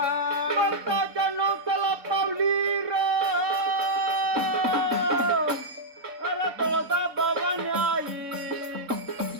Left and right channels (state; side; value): late; left; 3.6 ms